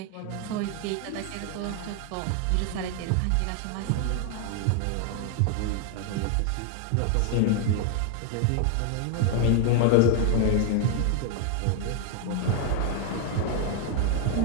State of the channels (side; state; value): both; different; correlation 0.00